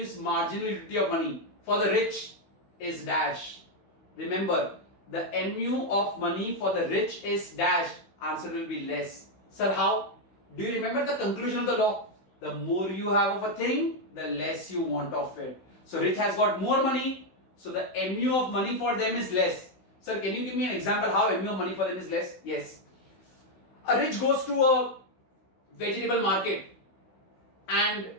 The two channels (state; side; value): late; right; 16 ms